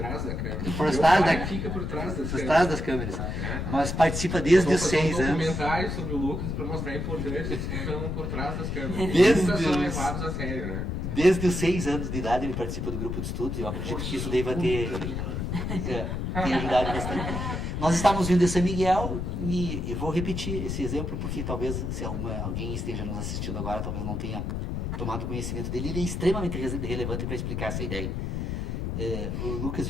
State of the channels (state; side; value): noise; left; rumble, 3 dB below the sound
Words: da câmera. Fica por trás das câmeras. Mas participa desde os 6 anos. Documentário sobre o Lucas para mostrar a importância dos que estão por trás das câmeras. Nunca são levados a sério, né? Desde os 6 anos de idade ele participa do grupo de estudos. Eu acredito que isso deva ter ajudado bastante. Nós estávamos vindo de São Miguel e eu vou repetir esse exemplo porque talvez, se alguém esteja nos assistindo agora, talvez não tenha tomado conhecimento dele. Ele é extremamente relevante para explicar essa ideia. O Lucas